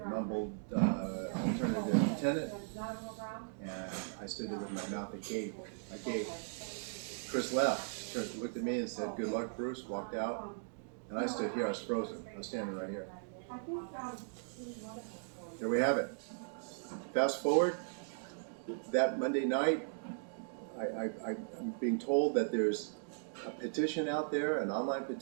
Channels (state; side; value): silent; left; digital silence